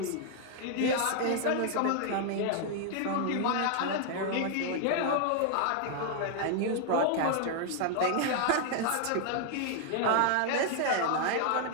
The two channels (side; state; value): both; different; correlation 0.00